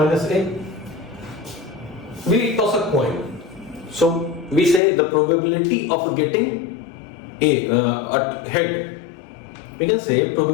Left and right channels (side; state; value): right; drops out; at 4.8 s